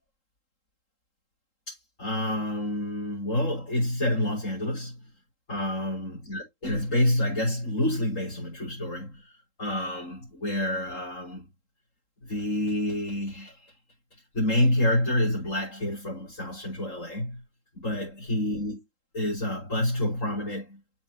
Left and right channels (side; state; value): right; late; 3.8 ms